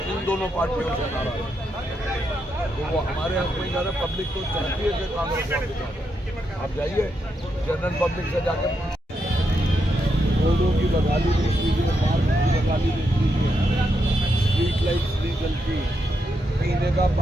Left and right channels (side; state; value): both; normal; correlation 0.82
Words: इन दोनों पार्टियों से नाराज है, तो वो हमारे हक में जा रहे। पब्लिक तो चाहती है कि कांग्रेस वापस आ जाए। आप जाइए जनरल पब्लिक से जाकर रोडों की बदहाली देख लीजिए, मार्ग की बदहाली देख लीजिए, स्ट्रीट लाइट्स नहीं जलती, पीने का